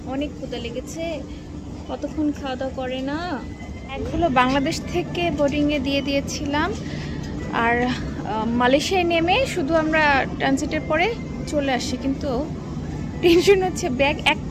অনেক ক্ষুধা লেগেছে, কতক্ষণ খাওয়া দাওয়া করে না। একগুলো বাংলাদেশ থেকে বোর্ডিংয়ে দিয়ে দিয়েছিলাম, আর মালয়েশিয়ায় নেমে শুধু আমরা ট্রানজিটের পরে চলে আসি। কিন্তু টেনশন হচ্ছে, ব্যাগ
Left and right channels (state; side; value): identical; both; correlation 1.00